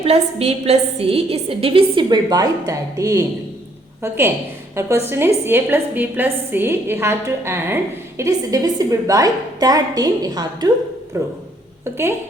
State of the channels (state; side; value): normal; both; correlation 0.66